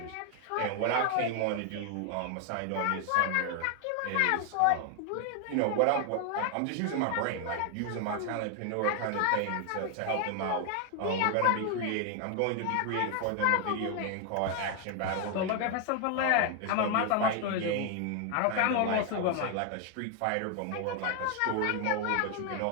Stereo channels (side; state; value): both; different; correlation 0.00